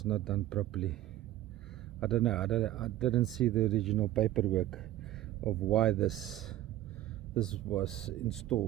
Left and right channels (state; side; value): quieter; left; 14.1 dB